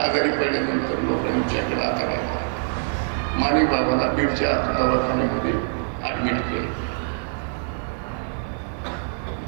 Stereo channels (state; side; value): silent; left; digital silence